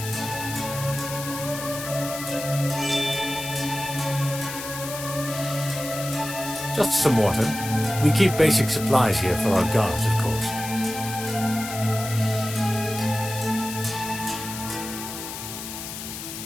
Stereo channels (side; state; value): left; noise; hiss, 8 dB below the sound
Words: Just some water. We keep basic supplies here for our guards, of course.